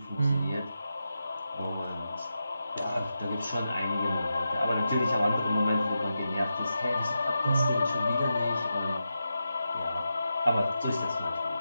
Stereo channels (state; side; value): inverted; both; correlation -0.89